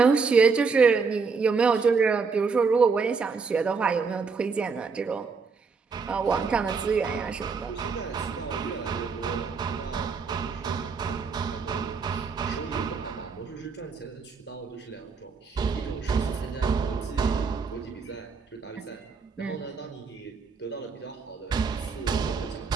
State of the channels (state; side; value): quieter; left; 5.0 dB